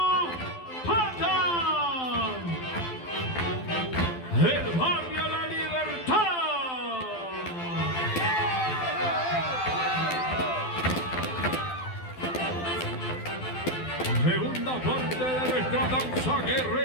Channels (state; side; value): late; right; 12 ms